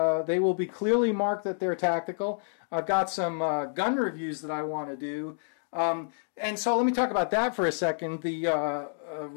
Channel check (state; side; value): silent; right; digital silence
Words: They will be clearly marked that they're tactical. I've got some gun reviews that I want to do. And so let me talk about that for a second. The